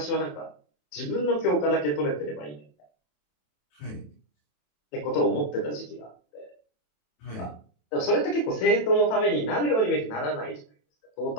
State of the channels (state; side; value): late; right; 27 ms